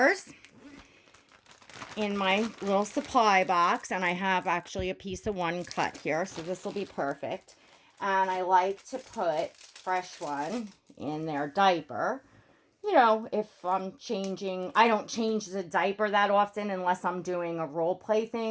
in my little supply box, and I have actually a piece of one cut here, so this will be perfect. And I like to put fresh one in their diaper. You know, if I'm changing, I don't change the diaper that often unless I'm doing a role play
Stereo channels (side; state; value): both; identical; correlation 1.00